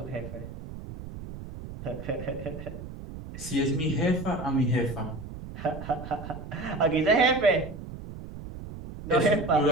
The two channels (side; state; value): right; noise; rumble, 11 dB below the sound